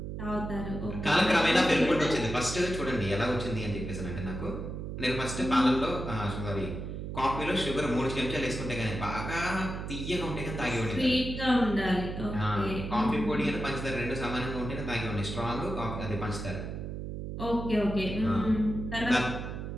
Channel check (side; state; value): right; noise; hum, 6 dB below the sound